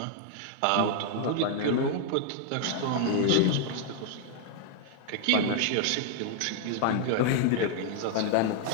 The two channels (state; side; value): different; both; correlation 0.00